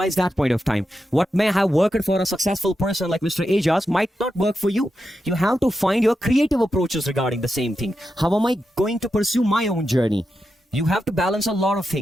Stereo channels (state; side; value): normal; both; correlation 0.88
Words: that point of time. What may have worked for a successful person like Mr. Ajaz might not work for you. You have to find your creative approaches regarding the same thing. How am I going to pursue my own journey? You have to balance a lot of